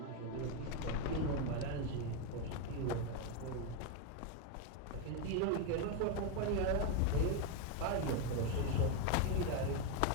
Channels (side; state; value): both; different; correlation 0.02